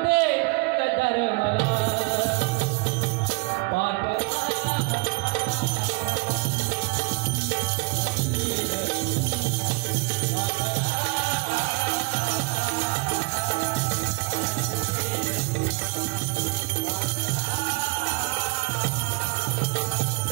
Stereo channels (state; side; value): quieter; left; 26.7 dB